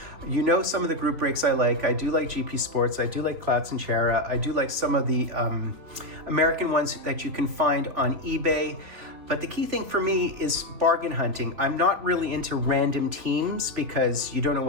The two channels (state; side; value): late; left; 3.6 ms